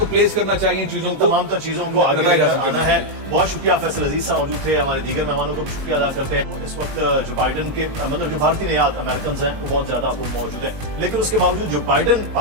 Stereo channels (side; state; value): left; late; 19 ms